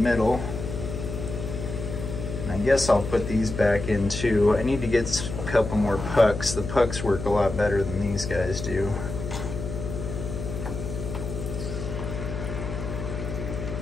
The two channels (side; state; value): left; noise; hum, 6 dB below the sound